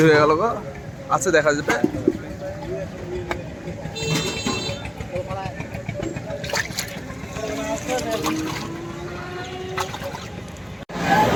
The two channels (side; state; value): both; identical; correlation 1.00